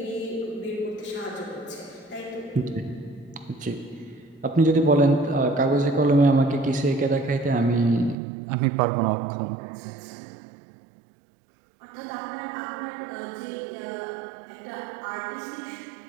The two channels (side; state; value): left; drops out; at 8.2 s